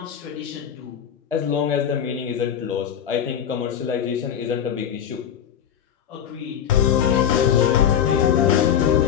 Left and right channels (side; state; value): right; quieter; 9.1 dB